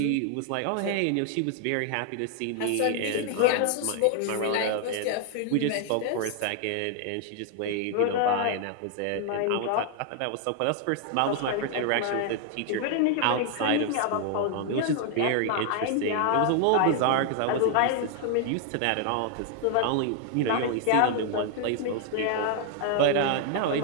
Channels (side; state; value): both; different; correlation 0.00